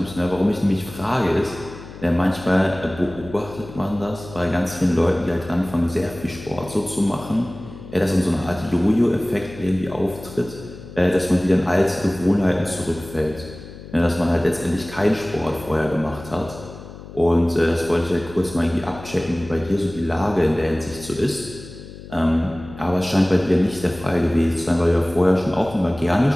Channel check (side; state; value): left; noise; hum, 15 dB below the sound